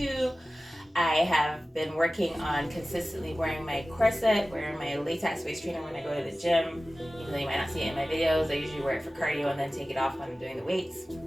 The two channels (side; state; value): both; normal; correlation 0.96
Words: I have been working on consistently wearing my corset, wearing my latex waist trainer when I go to the gym. Even though you might not see it in my videos, I usually wear it for cardio and then take it off when I'm doing the weights.